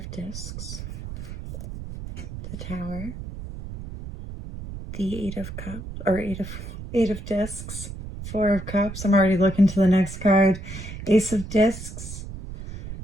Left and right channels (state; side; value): noise; right; rumble, 10 dB below the sound